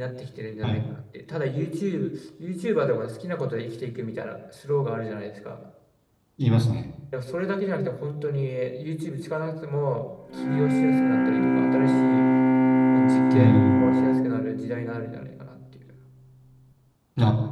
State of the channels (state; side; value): identical; both; correlation 1.00